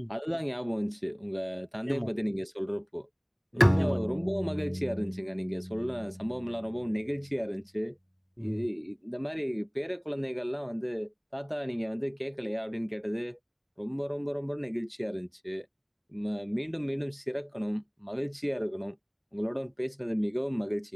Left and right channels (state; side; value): identical; both; correlation 1.00